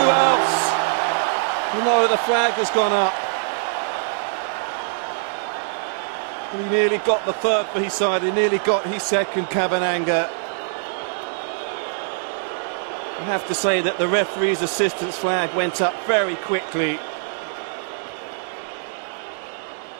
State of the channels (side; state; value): left; silent; digital silence